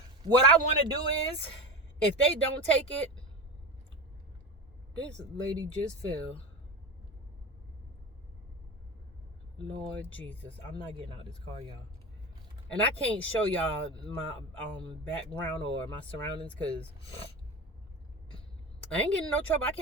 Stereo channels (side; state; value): both; normal; correlation 0.23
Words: What I want to do is, if they don't take it, this lady just fell. Lord Jesus, I'm not getting out of this car, y'all. And I can't show y'all my background or my surroundings, because I ain't getting no trouble. I